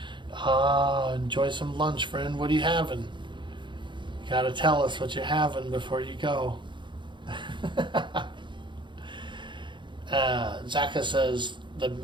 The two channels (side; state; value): left; late; 0.23 ms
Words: Enjoy some lunch, friend. What are you having? You gotta tell us what you're having before you go. Zaka says, the